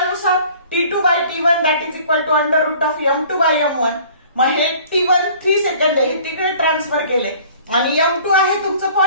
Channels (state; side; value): inverted; both; correlation -0.51